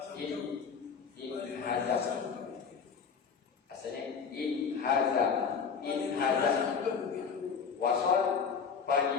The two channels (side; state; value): right; quieter; 6.2 dB